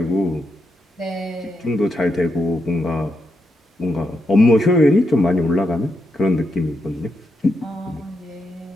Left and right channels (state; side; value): normal; both; correlation 0.83